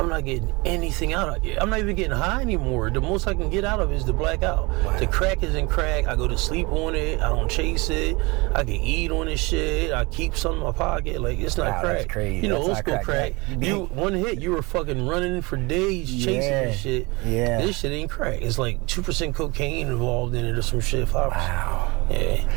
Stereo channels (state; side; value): quieter; left; 25.4 dB